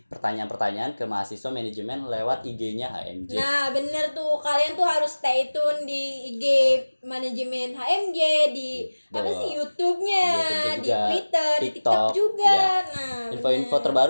pertanyaan-pertanyaan ke mahasiswa manajemen lewat IG-nya HMJ. Nah bener tuh, kalian tuh harus stay tune di IG manajemen HMJ, di apa sih YouTube-nya, YouTube di juga, Twitter, di TikTok, TikTok juga. ya. Nah Info-info bener.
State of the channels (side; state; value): both; inverted; correlation -1.00